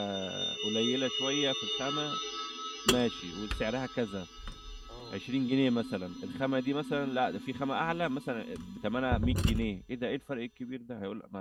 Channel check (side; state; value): both; identical; correlation 1.00